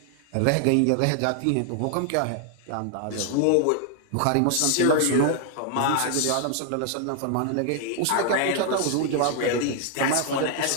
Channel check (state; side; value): different; both; correlation 0.00